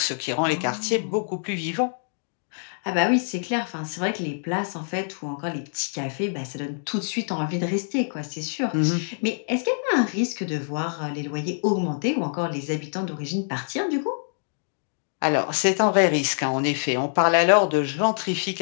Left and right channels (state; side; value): silent; right; digital silence